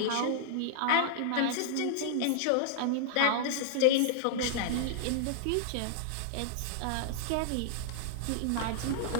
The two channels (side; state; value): both; different; correlation -0.01